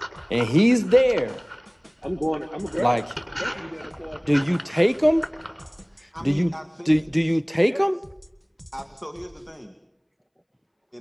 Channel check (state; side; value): identical; both; correlation 1.00